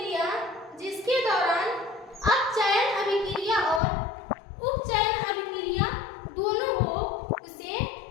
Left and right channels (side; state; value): right; drops out; at 3.8 s